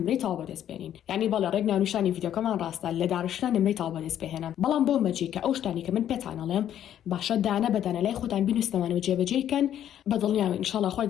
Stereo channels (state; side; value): quieter; right; 10.6 dB